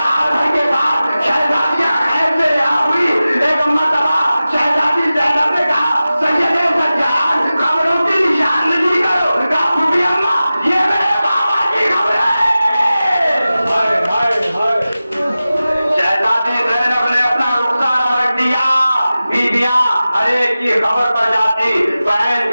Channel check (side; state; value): both; inverted; correlation -0.95